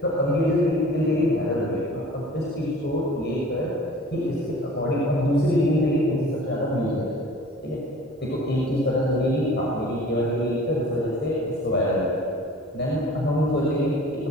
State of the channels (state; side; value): normal; both; correlation 0.46